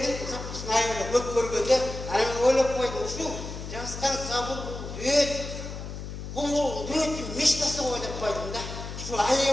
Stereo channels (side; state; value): left; noise; hum, 8 dB below the sound